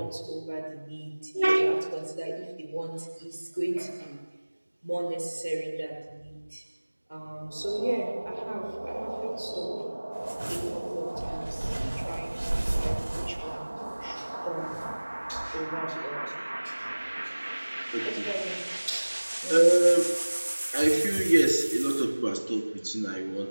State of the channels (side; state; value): both; inverted; correlation -1.00